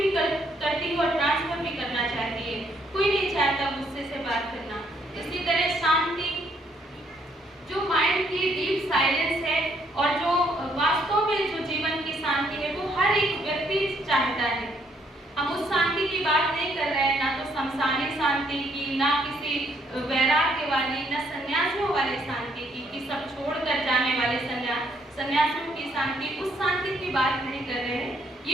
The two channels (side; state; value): both; normal; correlation 0.70